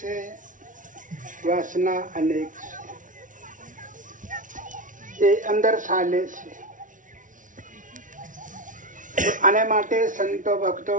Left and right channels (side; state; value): left; late; 0.38 ms